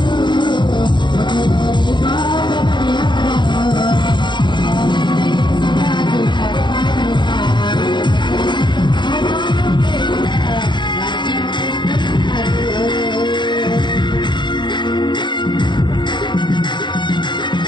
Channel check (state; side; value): late; right; 0.22 ms